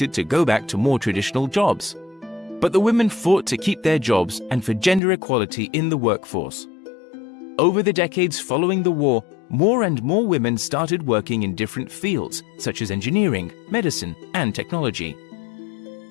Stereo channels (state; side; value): drops out; right; at 5.0 s